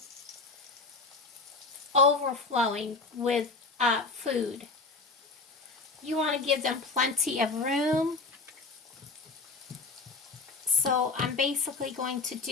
overflowing with food. You want to give them plenty of room. So I'm basically going to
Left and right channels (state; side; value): quieter; right; 4.0 dB